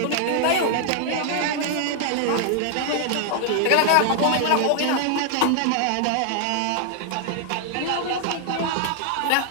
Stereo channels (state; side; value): different; both; correlation 0.00